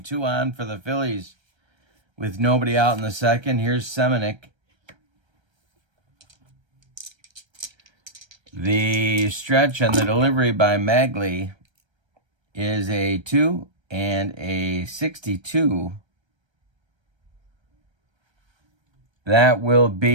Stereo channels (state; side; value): late; left; 1.3 ms